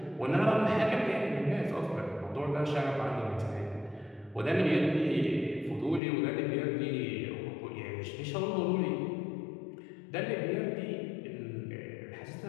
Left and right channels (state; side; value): drops out; right; at 6.0 s